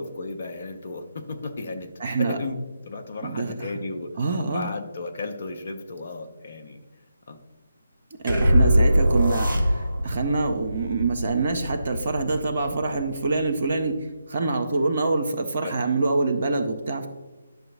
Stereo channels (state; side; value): inverted; both; correlation -0.84